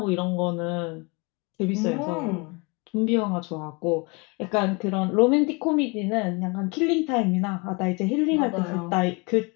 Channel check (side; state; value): right; quieter; 29.0 dB